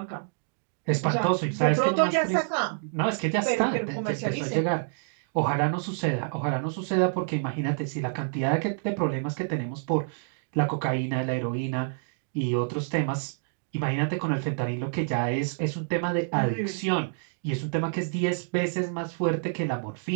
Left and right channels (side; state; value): left; silent; digital silence